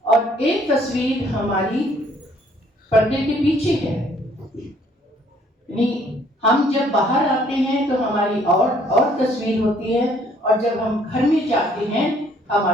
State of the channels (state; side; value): normal; both; correlation 0.62